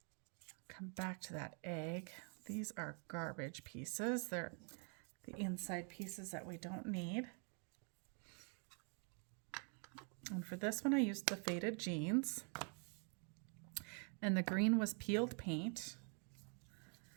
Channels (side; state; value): left; quieter; 39.6 dB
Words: Come back to that egg. These are garbage pieces. They're the inside pieces that we don't need. And for this one, I used the faded jeans. And the green was peeled paint.